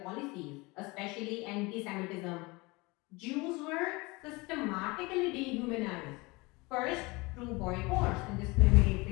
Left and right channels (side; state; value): right; quieter; 24.7 dB